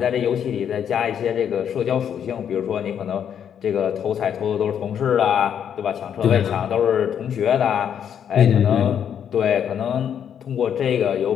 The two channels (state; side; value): quieter; right; 8.7 dB